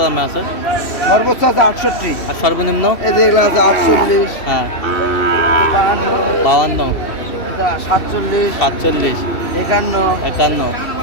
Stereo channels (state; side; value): late; right; 2.7 ms